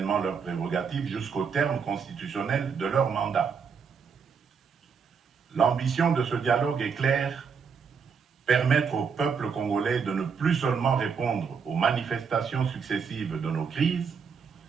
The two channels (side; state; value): left; quieter; 6.1 dB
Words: leurs prérogatives jusqu'au terme constitutionnel de leur mandat. L'ambition de ce dialogue est claire: permettre au peuple congolais de ne plus seulement répondre aux manifestations successives de nos crises,